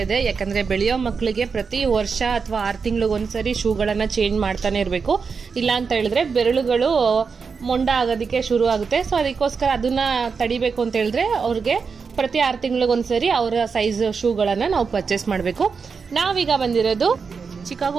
ಇದೆ. ಯಾಕಂದ್ರೆ ಬೆಳೆಯೋ ಮಕ್ಕಳಿಗೆ ಪ್ರತಿ ವರ್ಷ ಅಥವಾ 6 ತಿಂಗಳಿಗೊಂದ್ಸರಿ ಶೂಗಳನ್ನ ಚೇಂಜ್ ಮಾಡ್ತಾನೆ ಇರಬೇಕು. ಇಲ್ಲ ಅಂತ ಹೇಳಿದ್ರೆ ಬೆರಳುಗಳು ಮೊಂಡ ಆಗೋದಕ್ಕೆ ಶುರು ಆಗುತ್ತೆ. ಸೊ ಅದಕ್ಕೋಸ್ಕರ ಅದನ್ನ ತಡಿಬೇಕು ಅಂತ ಹೇಳಿದ್ರೆ ಅವ್ರಿಗೆ ಪ್ರತಿ 6 ತಿಂಗಳಿಗೊಂದ್ಸರಿ ಅವರ ಸೈಜ್ ಶೂಗಳನ್ನ ನಾವು ಪರ್ಚೇಸ್ ಮಾಡಬೇಕು. ನಾವೀಗ ಬಂದಿರೋದು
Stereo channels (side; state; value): left; quieter; 5.4 dB